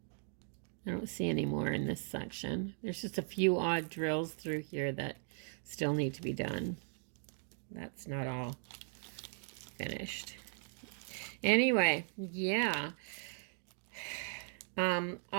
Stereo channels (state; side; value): silent; left; 52 dB below the other